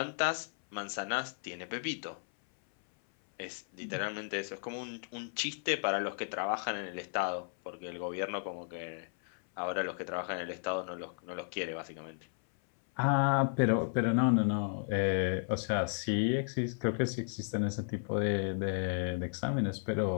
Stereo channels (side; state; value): right; silent; 55 dB below the other